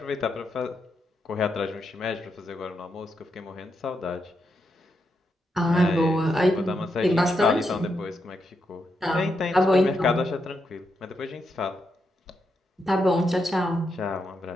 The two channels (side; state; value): both; normal; correlation 0.83